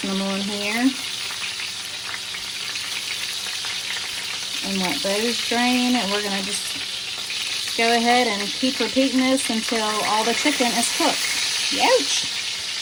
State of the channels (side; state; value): both; identical; correlation 1.00